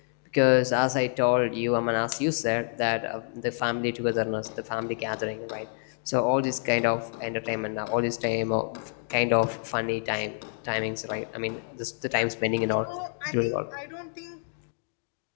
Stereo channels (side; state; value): right; silent; 59 dB below the other